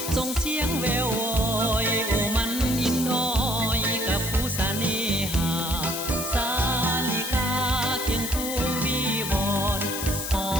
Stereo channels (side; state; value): left; noise; hiss, 5 dB below the sound